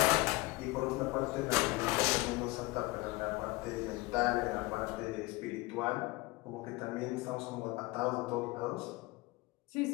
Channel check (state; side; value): quieter; right; 21.9 dB